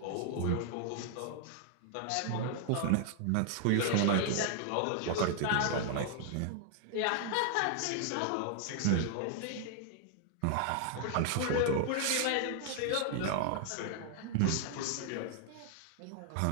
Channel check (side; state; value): both; different; correlation 0.00